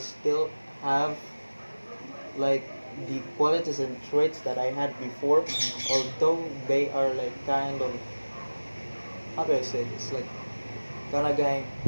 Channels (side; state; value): both; inverted; correlation -1.00